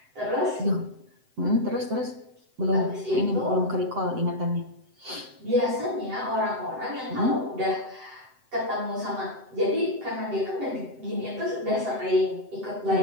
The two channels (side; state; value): left; late; 7.8 ms